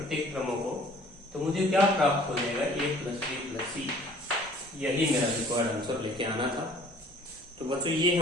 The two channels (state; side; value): normal; both; correlation 0.53